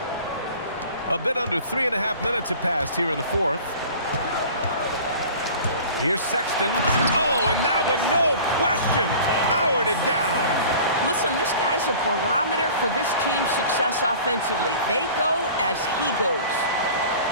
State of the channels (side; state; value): both; inverted; correlation -0.43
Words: A bit under 3.5 minutes have passed here in the 4th. Here's Sexton. Oh, and that one, no question, powered it down. Listen, this guy's a barometer for this team's success offensively. They go as he goes.